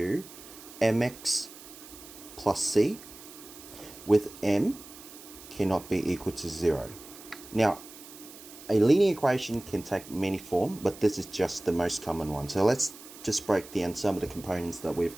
mx plus c, with m cannot be equal to 0. Now, a linear equation can take many forms, but this is just the most common one. So let's just break down some of the components that we've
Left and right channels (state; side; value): noise; right; hiss, 17 dB below the sound